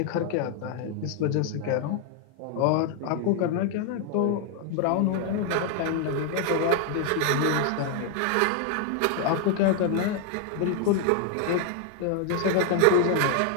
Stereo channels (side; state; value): both; different; correlation 0.00